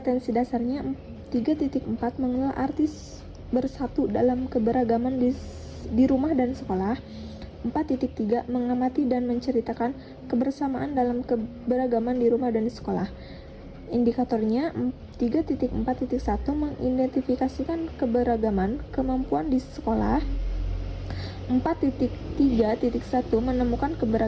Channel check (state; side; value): identical; both; correlation 1.00